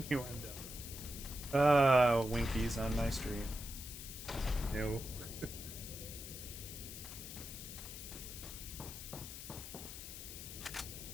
Winkies on my stream. No.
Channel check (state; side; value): noise; left; hiss, 10 dB below the sound